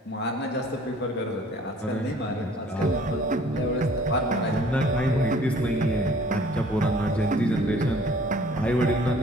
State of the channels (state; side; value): normal; both; correlation 0.53